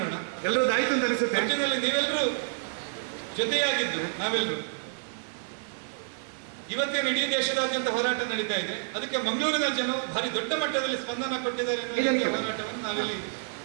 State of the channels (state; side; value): silent; left; 59 dB below the other